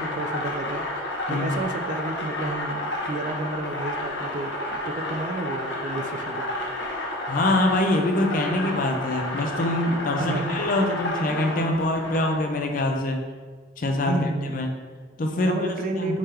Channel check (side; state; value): both; normal; correlation 0.42